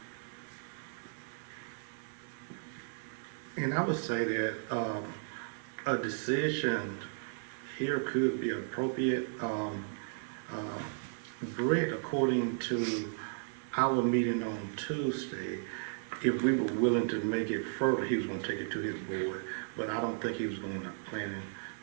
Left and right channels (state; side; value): silent; left; digital silence